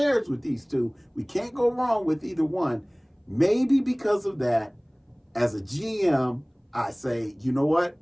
with these two, we can't go wrong with either one. Maybe because of that, as a GM, I say, you know what?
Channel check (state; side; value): identical; both; correlation 1.00